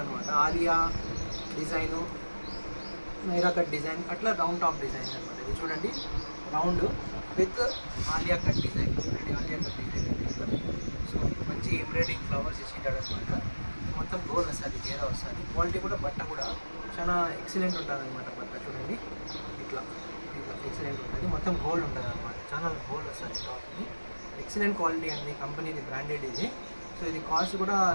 Alia design, Naira cut design, అట్లా రౌండ్ టాప్ డిజైన్ అనమాట. ఇది చూడండి, round with Alia cut design. చూడండి, ఆలియా కట్ డిజైన్. సో మంచి ఎంబ్రాయిడింగ్ ఫ్లవర్స్ ఇచ్చింటాడు అనమాట. మొత్తం గోల్ వస్తుంది, గేరా వస్తుంది. క్వాలిటీ కూడా, బట్ట కూడా చాలా ఎక్సలెంట్ ఉంటుంది అనమాట. బట్ట చూడండి, ఇట్లా ఇట్లా ఎక్సలెంట్ ఉంటుంది. మొత్తం గోల్డ్ ఉంటుంది అనమాట. చాలా గోల్డ్ వస్తుంది టాప్కి. ఎక్సలెంట్ క్వాలిటీ అండి, కంపెనీది బ్రాండెడ్ ఇది. సో ఇది కాస్ట్ కూడా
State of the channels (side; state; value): both; inverted; correlation -1.00